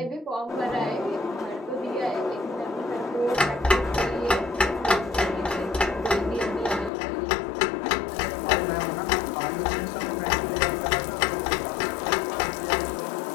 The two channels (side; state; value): right; drops out; at 6.9 s